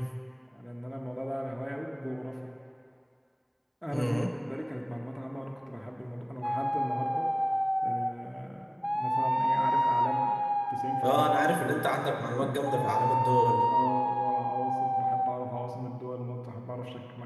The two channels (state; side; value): identical; both; correlation 1.00